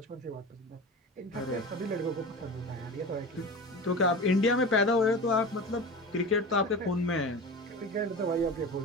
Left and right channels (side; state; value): both; normal; correlation 0.31